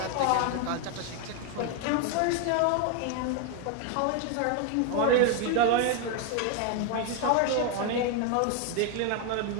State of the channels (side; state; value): both; different; correlation 0.01